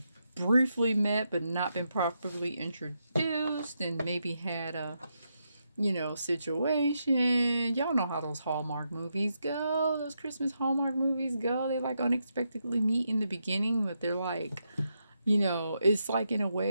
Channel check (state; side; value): inverted; both; correlation -0.83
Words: briefly met but not been properly introduced and maybe had a situation. Y'all know how those Hallmark movies go. Those Christmas Hallmark movies go. They like unexpectedly meet in the beginning, but they're like, it's like in a